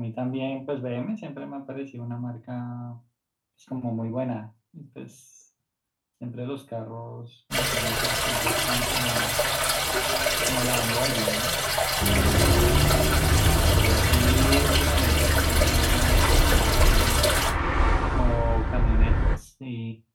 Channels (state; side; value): identical; both; correlation 1.00